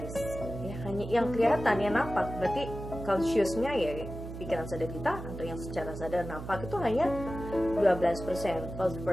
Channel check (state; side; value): noise; right; hum, 10 dB below the sound